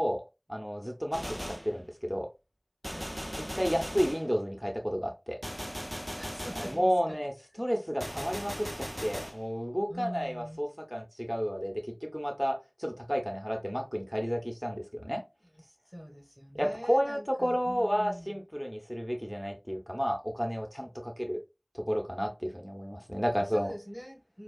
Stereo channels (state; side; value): identical; both; correlation 1.00